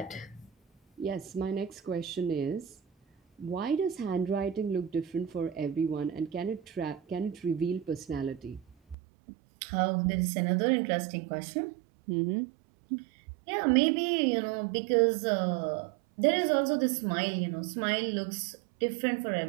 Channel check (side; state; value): left; drops out; at 9.0 s